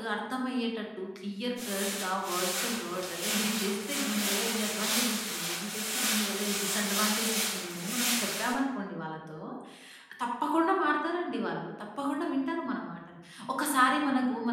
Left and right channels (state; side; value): identical; both; correlation 1.00